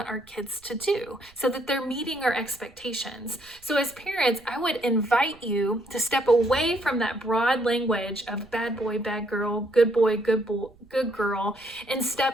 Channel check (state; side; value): noise; right; rumble, 28 dB below the sound